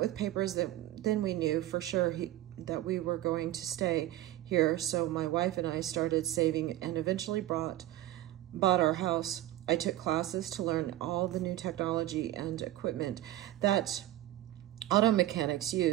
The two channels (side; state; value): left; quieter; 14.6 dB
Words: papers, then we knew for sure that we were going to stay here, so my wife and I started saving and eventually bought our house. I took classes to learn all the new technology and equipment that auto mechanics